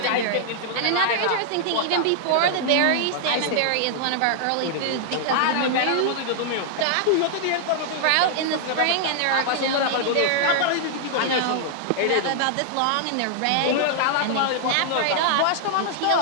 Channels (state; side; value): different; both; correlation -0.01